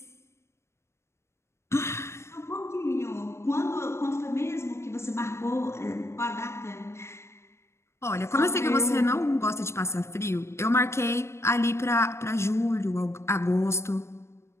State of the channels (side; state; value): right; late; 0.13 ms